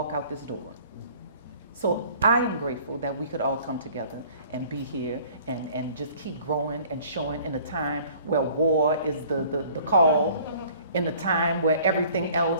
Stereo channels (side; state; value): both; inverted; correlation -0.52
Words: out this door. So I am grateful that we could all come together and be here and just keep growing and showing in a time where war is the call, in a time where everything